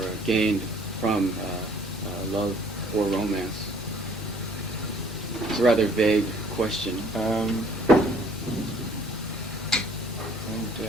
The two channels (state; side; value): normal; both; correlation 0.58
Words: gained from love or romance? It's a rather vague question. I